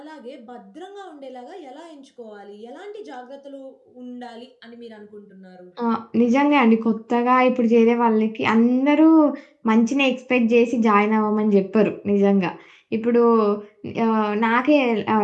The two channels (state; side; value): identical; both; correlation 1.00